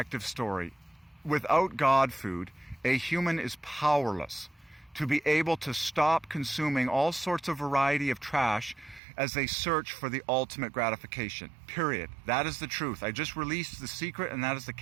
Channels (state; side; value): drops out; left; at 9.0 s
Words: story. Without God food, a human is powerless to be able to stop consuming all sorts of variety of trash as they search for the ultimate gratification. Period. That is the truth. I just released the secret, and that is the